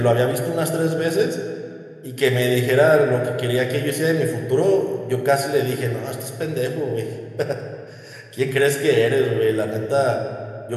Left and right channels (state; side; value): identical; both; correlation 1.00